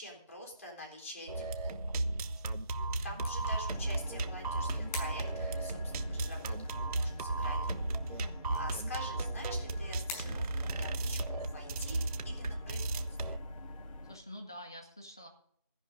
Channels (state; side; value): inverted; both; correlation -0.72